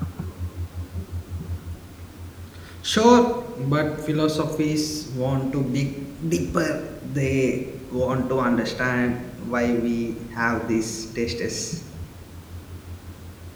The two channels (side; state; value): both; identical; correlation 1.00